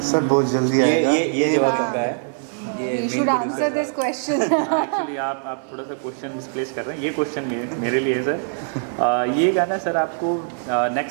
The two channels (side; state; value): left; silent; digital silence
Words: सर बहुत जल्दी आएगा। ये जवाब उनका है। You should answer this question. Actually आप थोड़ा सा क्वेश्चन मिसप्लेस कर रहे हैं, ये क्वेश्चन मेरे लिए है सर। ये गाना सर आपको